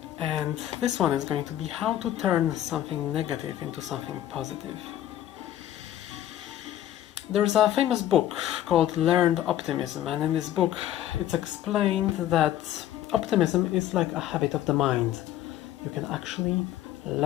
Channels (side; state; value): right; quieter; 12.3 dB